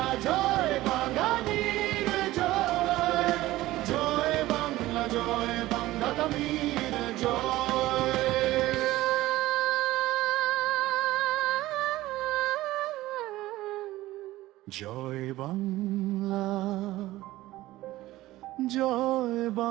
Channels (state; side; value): quieter; left; 16.9 dB